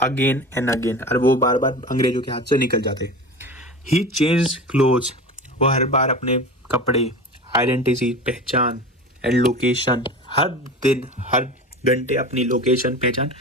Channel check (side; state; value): both; normal; correlation 0.32